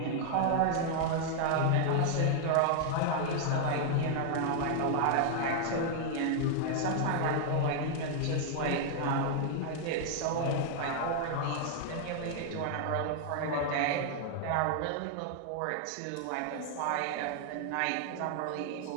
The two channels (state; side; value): different; both; correlation 0.00